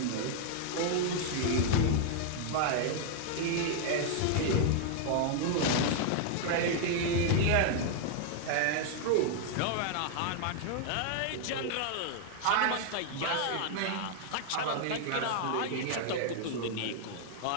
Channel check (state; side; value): different; both; correlation 0.00